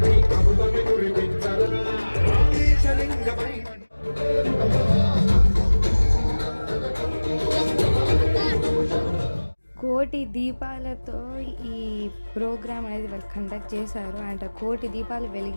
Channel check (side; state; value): both; inverted; correlation -1.00